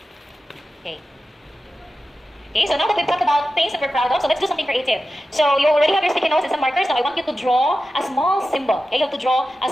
Okay. Okay, so now that we've talked about things that we're proud of, so let's do something creative. So you already have your sticky notes and some markers. Now I want you to draw a small symbol. Okay, you have to draw a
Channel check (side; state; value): both; normal; correlation 0.92